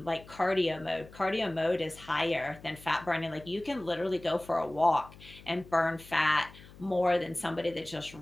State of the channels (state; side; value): noise; left; hum, 20 dB below the sound